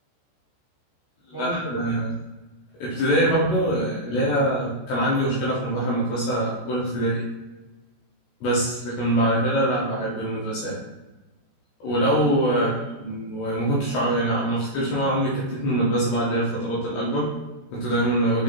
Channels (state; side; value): late; right; 14 ms